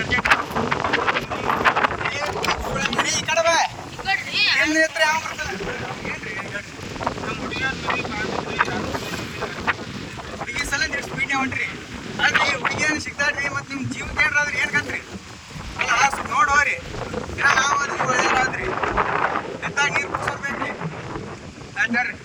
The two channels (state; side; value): identical; both; correlation 1.00